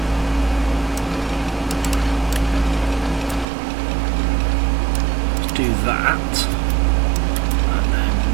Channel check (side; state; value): left; drops out; at 3.5 s